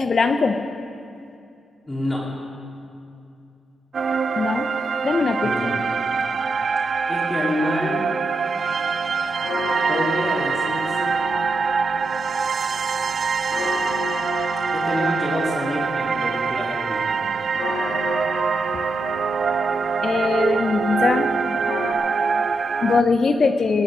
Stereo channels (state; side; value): normal; both; correlation 0.84